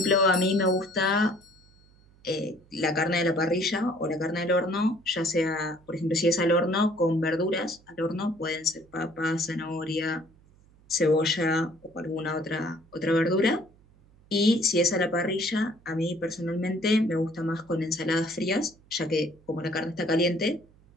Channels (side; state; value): right; noise; hum, 29 dB below the sound